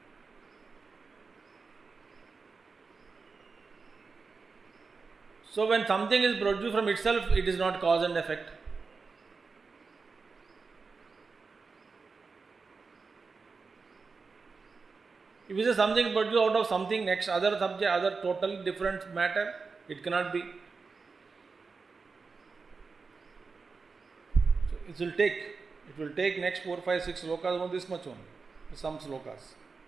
So when something is produced from itself, it is not cause and effect. If it is something produced out of something next, other subject, other totally different matter, it cannot be. So it will take next 4, 5, 6 slokas, only this much only, some slokas.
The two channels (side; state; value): left; quieter; 4.6 dB